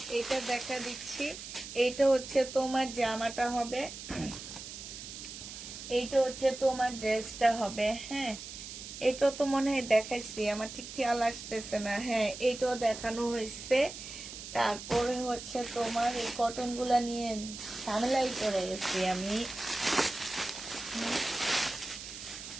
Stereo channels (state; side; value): noise; right; hiss, 11 dB below the sound